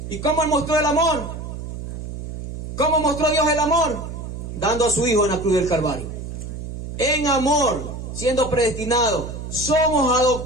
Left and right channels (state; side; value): noise; right; hum, 8 dB below the sound